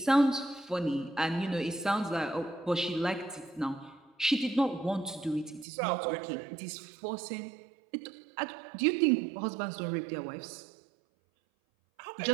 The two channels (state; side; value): drops out; left; at 5.7 s